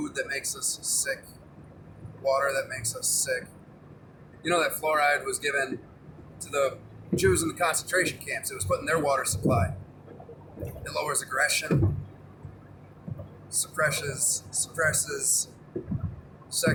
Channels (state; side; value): identical; both; correlation 1.00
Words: that makes us sick, water that makes us sick. You know that fluoride was given to the Jews in the concentration camps. It was put in their water supply. It lowers aggression, suppresses